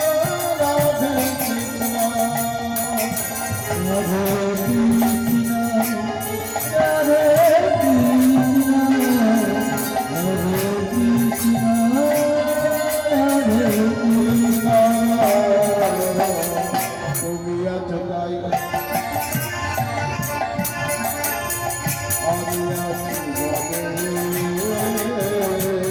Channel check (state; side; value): identical; both; correlation 1.00